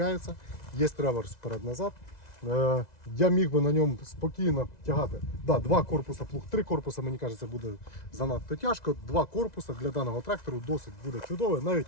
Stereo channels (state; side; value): late; right; 2.0 ms